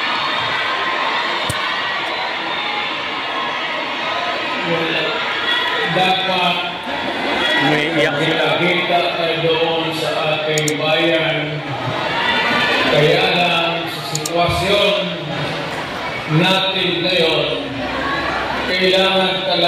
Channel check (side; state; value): both; identical; correlation 1.00